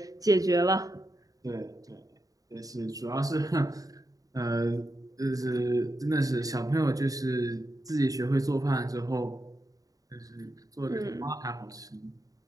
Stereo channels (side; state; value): left; late; 0.17 ms